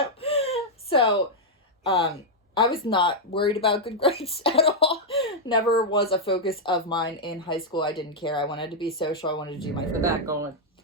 So, I was not worried about good grades at all. Never was a focus of mine in high school. I didn't care. I wanted to be social. I wanted to do my The back going.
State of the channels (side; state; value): both; normal; correlation -0.03